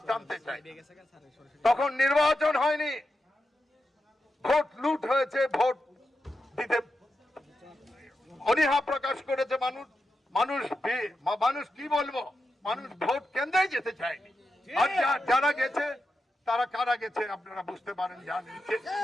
জানতে চাই। তখন নির্বাচন হয়নি, ভোট লুট হয়েছে, ভোট দিতে অনীহা প্রকাশ করেছে মানুষ কি বলবো, মানুষ ভোট কেন্দ্রেই যেতে চায়নি। আর যারা গেছে তারা কারা গেছে আপনারা বুঝতে পারেন, জানেন।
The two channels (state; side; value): normal; both; correlation 0.88